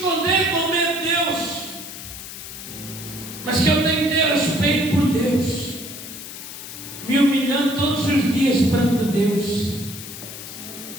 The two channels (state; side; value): noise; left; hiss, 11 dB below the sound